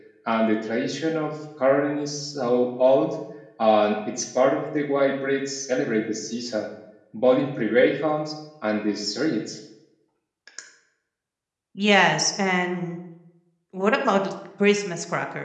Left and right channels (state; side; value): identical; both; correlation 1.00